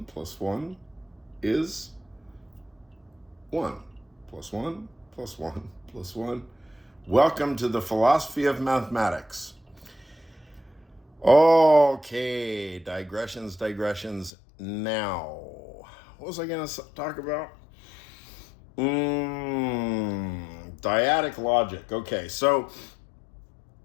plus 1 is 1 plus 1 plus 1 plus 1. Welcome to the philosophy of mathematics. Okay, digressions. Now, what was I going to talk about? Dyadic logic. Okay, so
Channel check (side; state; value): right; drops out; at 14.3 s